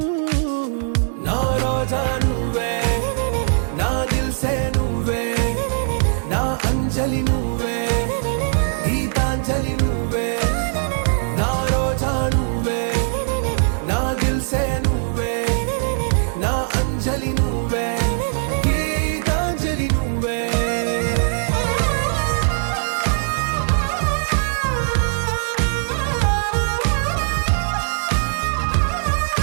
నా రోజా నువ్వే నా దిల్ సే నువ్వే నా అంజలి నువ్వే గీతాంజలి నువ్వే నా రోజా నువ్వే నా దిల్ సే నువ్వే నా అంజలి నువ్వే గీతాంజలి నువ్వే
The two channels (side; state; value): left; silent; digital silence